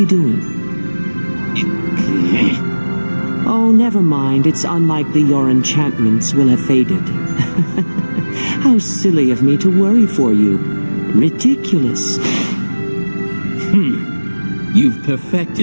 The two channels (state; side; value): inverted; both; correlation -1.00